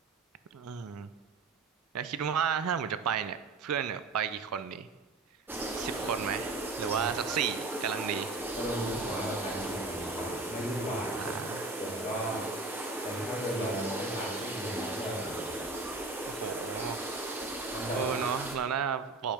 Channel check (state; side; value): quieter; left; 3.7 dB